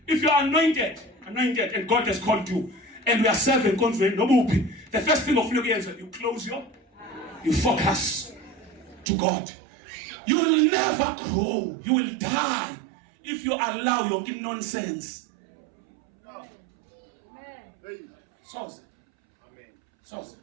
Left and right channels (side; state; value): left; drops out; at 9.1 s